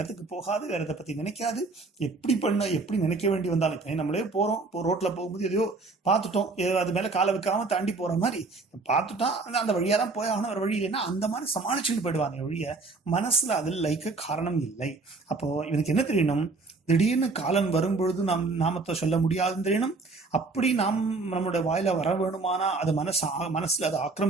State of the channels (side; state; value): left; quieter; 3.7 dB